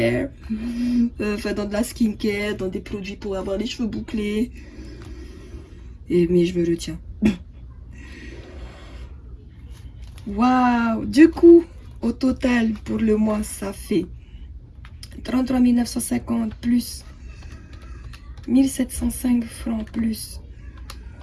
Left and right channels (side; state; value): both; identical; correlation 1.00